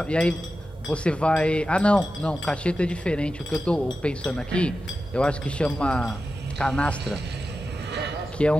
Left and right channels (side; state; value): both; normal; correlation 0.92